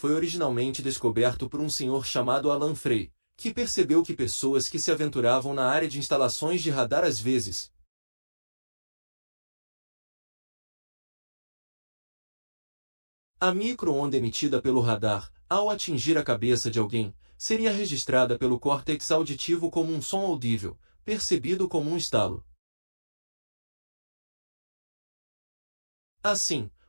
originalmente descoberto por um senhor chamado Alan Frey, que percebeu que pessoas que se aventuravam na área de instalações de radar às vezes a micro-onda emitida pelo radar, ao atingir a cabeça de alguém, seria registrada pelo córtex auditivo como um som audível, percebido como um estalo. Assim,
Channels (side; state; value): both; inverted; correlation -1.00